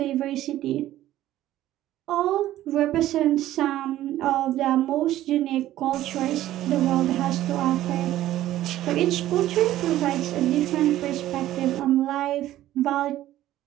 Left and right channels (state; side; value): quieter; left; 13.9 dB